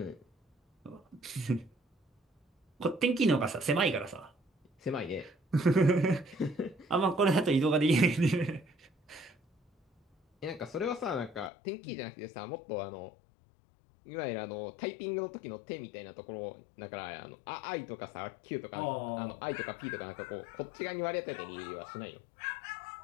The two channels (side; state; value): right; drops out; at 11.5 s